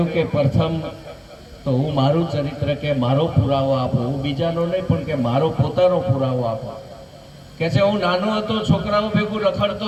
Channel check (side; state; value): both; identical; correlation 1.00